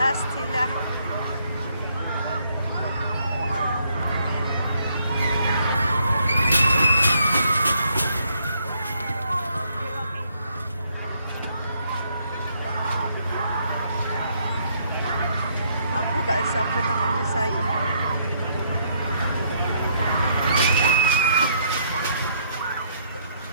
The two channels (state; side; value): inverted; both; correlation -0.70